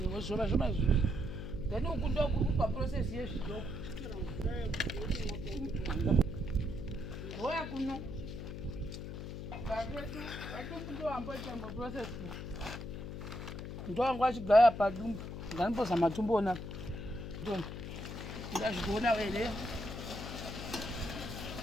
zvoma izvi then uku ndokuri paprocess yezvidoko goya kuno vadumbu ndoamboita maprocess ndowangu achigaya padumbu nganimbozama tumboona ndazvigoona here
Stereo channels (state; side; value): noise; left; hum, 7 dB below the sound